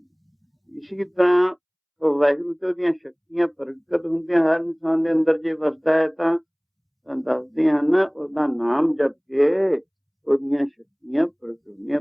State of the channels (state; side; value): identical; both; correlation 1.00